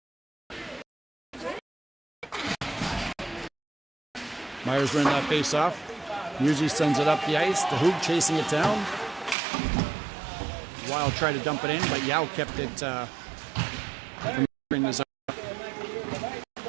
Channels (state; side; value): drops out; left; at 9.3 s